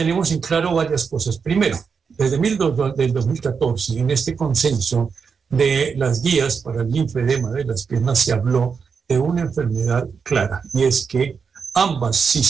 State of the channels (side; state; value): left; quieter; 5.9 dB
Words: en claro varias cosas. Primero, desde el 2014, en este consenso de las guías para el linfedema de las piernas se habló de una enfermedad clara, y es que ambos